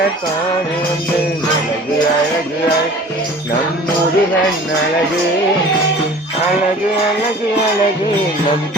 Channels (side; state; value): both; normal; correlation 0.44